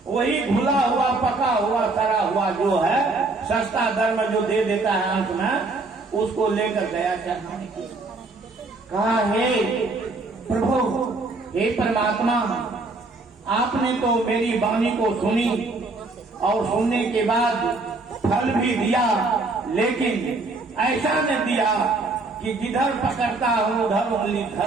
वही घुला हुआ पका हुआ सड़ा हुआ जो है सस्ता दर में जो दे देता है अंत में, उसको लेकर गया चढ़ाने के। कहा हे प्रभु, हे परमात्मा, आपने तो मेरी वाणी को सुनी और सुनने के बाद फल भी दिया, लेकिन ऐसा न दिया कि जिधर पकड़ता हूं उधर उंगली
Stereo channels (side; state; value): left; quieter; 3.4 dB